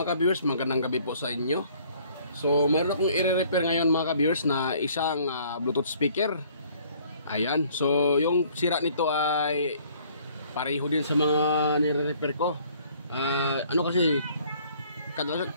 ka-viewers, magandang gabi po sa inyo. So meron akong i-repair ngayon mga ka-viewers na isang Bluetooth speaker. Ayan, so yung sira nito ay pareho din sa mga nire-repair ko. Kasi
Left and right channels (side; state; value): both; inverted; correlation -0.58